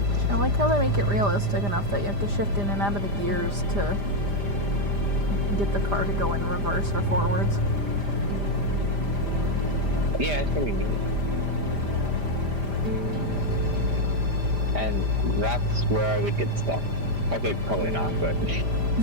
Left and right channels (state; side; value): late; left; 5.0 ms